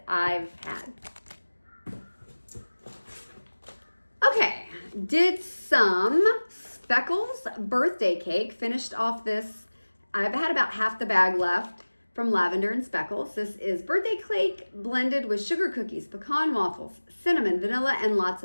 I've had. Okay, did some Speckles birthday cake. Finished off this. I've had about half the bag left from Lavender and Speckles. This is birthday cake blended with sugar cookies, pecan waffles, cinnamon, vanilla, and lots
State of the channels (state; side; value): inverted; both; correlation -1.00